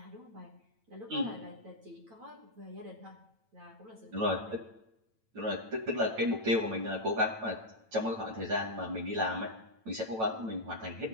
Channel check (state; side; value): late; left; 9.0 ms